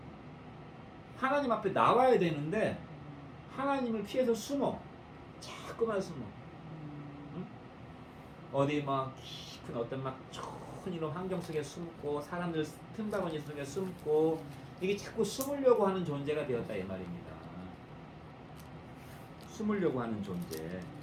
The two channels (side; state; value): both; identical; correlation 1.00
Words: 하나님 앞에 나와야 되는데 하나님을 피해서 숨어. 자꾸만 숨어. 응? 어디 막 깊은 어떤 막 좋은 이런 환경 속에 숨고 사람들 틈바구니 속에 숨고 이게 자꾸 숨으려고 하는 존재가 되었다 이 말입니다. 숨으려고 하는 존재.